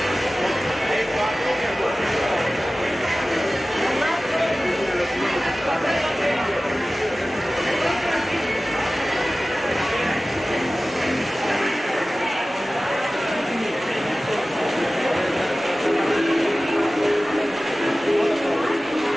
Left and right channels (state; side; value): normal; both; correlation 0.97